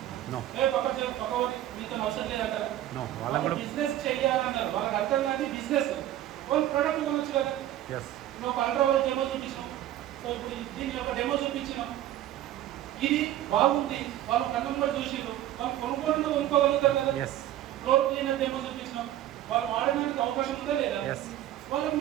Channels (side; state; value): left; quieter; 13.1 dB